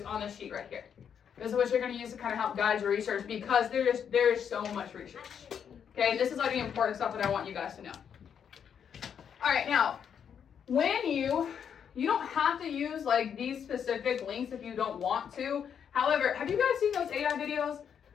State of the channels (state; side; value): quieter; right; 7.9 dB